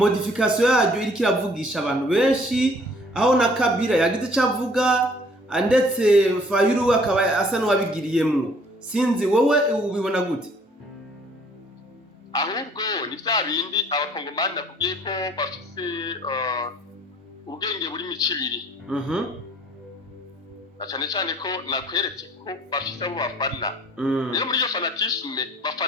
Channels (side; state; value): both; normal; correlation 0.57